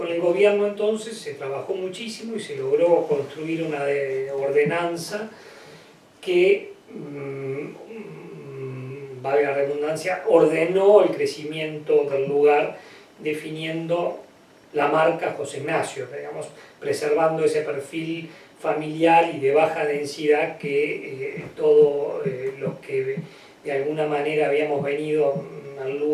el gobierno entonces se trabajó muchísimo y se logró construir una ordenanza que, valga la redundancia, ordenó el crecimiento del lugar, definiendo la marca José Ignacio, digamos, preservando ese perfil familiar y de baja densidad que todos los que de alguna manera habíamos venido al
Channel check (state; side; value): identical; both; correlation 1.00